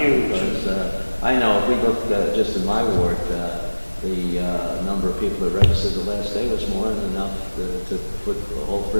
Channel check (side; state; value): both; inverted; correlation -1.00